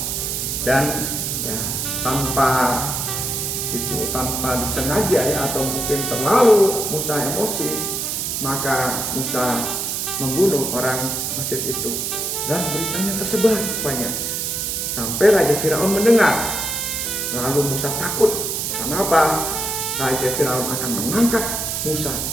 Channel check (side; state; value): right; noise; hiss, 2 dB below the sound